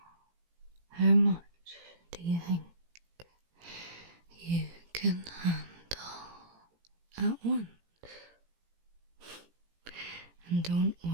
how much do you think you can handle at once? And don't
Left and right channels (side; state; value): left; late; 17 ms